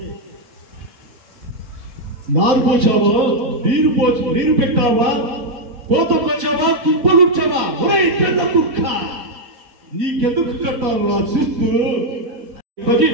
నారు పోచావా, నీరు పెట్టావా, కోతకొచ్చావా, కుప్పలుచ్చావా, పెద్ద కుక్క నీకెందుకు కట్టారు నా శిస్తు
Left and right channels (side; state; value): left; late; 4.1 ms